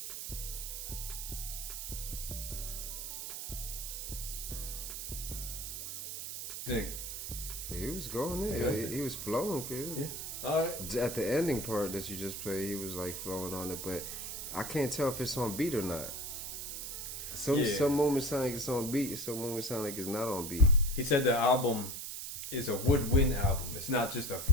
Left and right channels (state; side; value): noise; right; hiss, 6 dB below the sound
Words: Dang. He was going in. Yeah. He was flowing, kid. Yeah. Alright. At the ending part that you just played, he was like flowing on it, but I can't tell if it's on beat or not. Some moments sound like it's on beat, some moments sound like it's not on beat. He said the album is a woodwind album. It's not just a